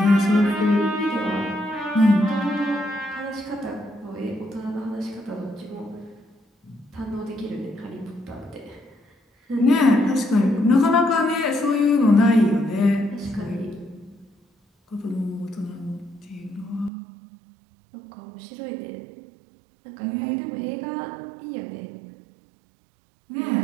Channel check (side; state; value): left; drops out; at 16.9 s